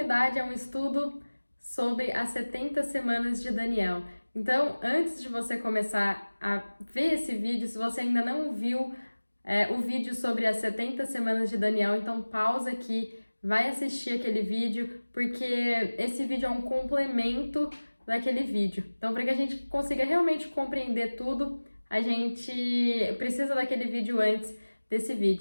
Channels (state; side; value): inverted; both; correlation -1.00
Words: a um estudo sobre as 70 semanas de Daniel. Então, antes de você começar a ver esse vídeo, se você ainda não viu o vídeo sobre as 70 semanas de Daniel, então pausa aqui, vai assistir aquele vídeo, porque esse vídeo é um complemento daquele vídeo. Então, para que a gente consiga realmente compreender tudo, a gente precisa daquele vídeo antes desse